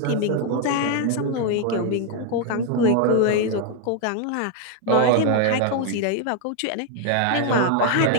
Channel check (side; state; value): both; different; correlation 0.01